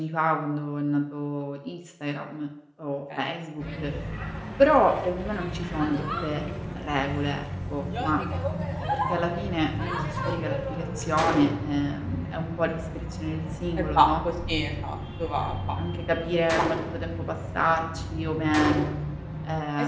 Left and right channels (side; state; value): both; identical; correlation 1.00